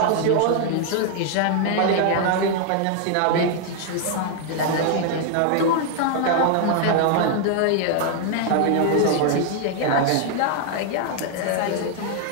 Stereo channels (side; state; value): both; different; correlation 0.00